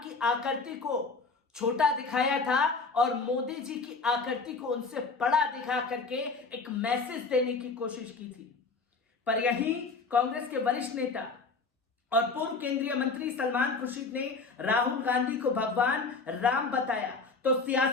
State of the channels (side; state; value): right; quieter; 4.2 dB